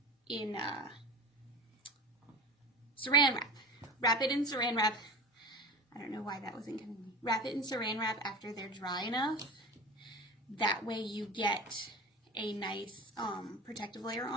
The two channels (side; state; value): both; normal; correlation 0.31